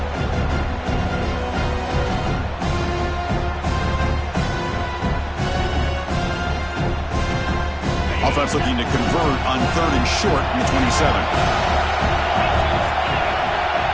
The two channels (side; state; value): both; identical; correlation 1.00